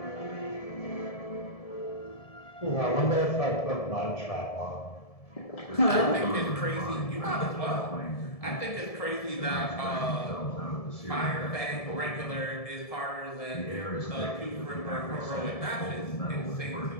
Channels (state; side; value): late; right; 1.7 ms